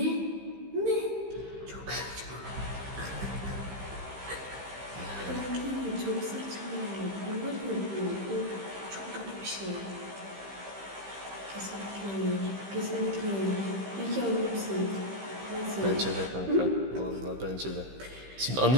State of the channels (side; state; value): left; late; 15 ms